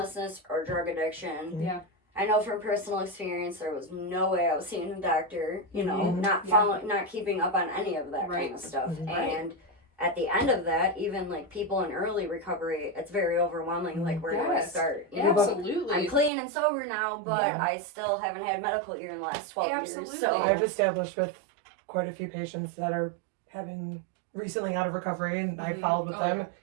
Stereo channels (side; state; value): left; drops out; at 16.3 s